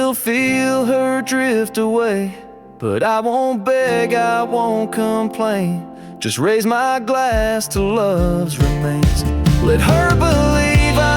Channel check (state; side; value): identical; both; correlation 1.00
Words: feel her drift away. But I won't beg, I won't complain, just raise my glass to love's remains. Let her believe